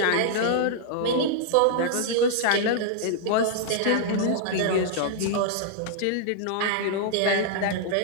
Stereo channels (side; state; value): both; different; correlation -0.01